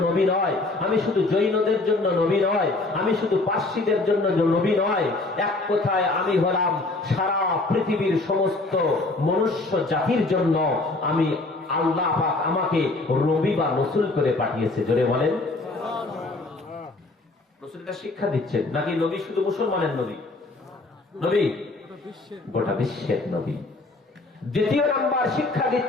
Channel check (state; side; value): quieter; right; 3.2 dB